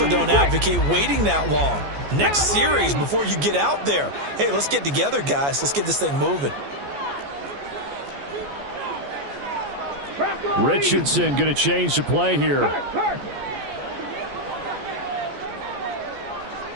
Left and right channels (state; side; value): late; left; 14 ms